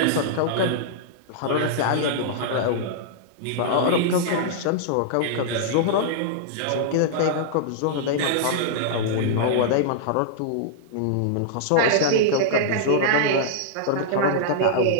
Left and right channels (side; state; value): both; different; correlation -0.01